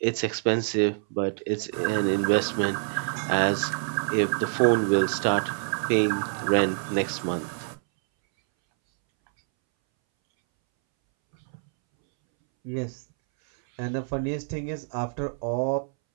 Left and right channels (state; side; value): silent; left; 61 dB below the other